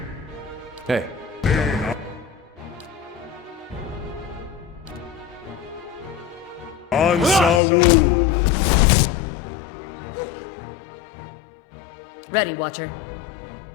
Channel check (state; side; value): drops out; right; at 7.6 s